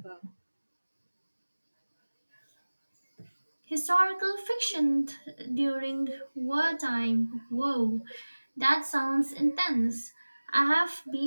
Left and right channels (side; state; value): both; inverted; correlation -1.00